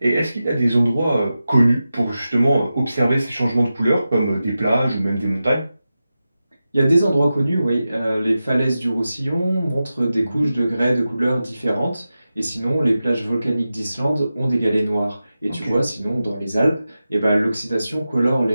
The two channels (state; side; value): inverted; both; correlation -0.93